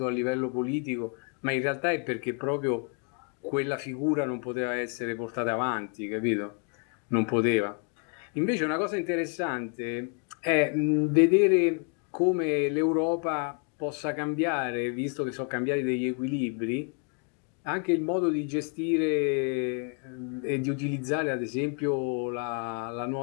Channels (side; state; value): right; quieter; 40.0 dB